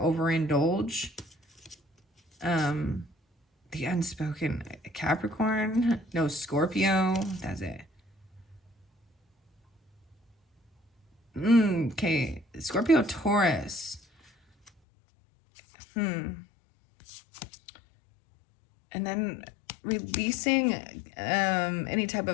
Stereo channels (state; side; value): drops out; right; at 14.7 s